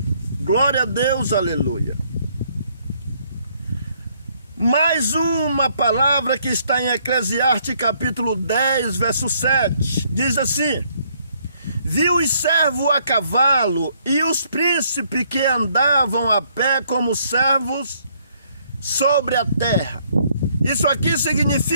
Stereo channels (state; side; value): inverted; both; correlation -0.67